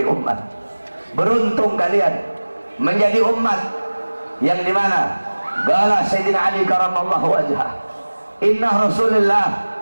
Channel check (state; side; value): inverted; both; correlation -1.00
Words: umat. Beruntung kalian menjadi umat yang dimana qala Sayyidina Ali karamallahu wajhah, inna Rasulullah